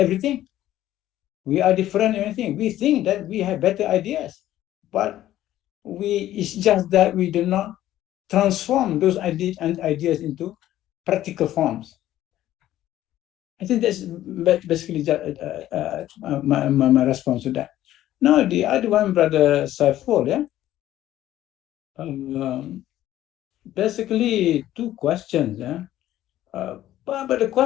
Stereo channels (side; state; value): right; quieter; 13.5 dB